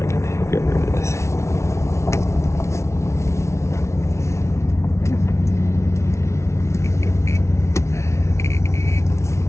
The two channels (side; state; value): right; late; 0.13 ms